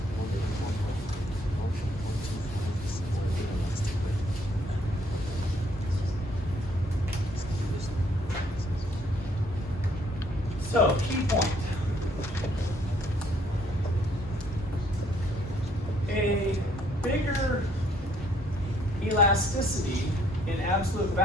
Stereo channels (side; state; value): both; normal; correlation 0.66